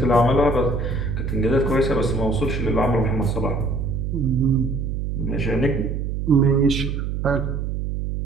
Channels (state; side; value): noise; right; hum, 2 dB below the sound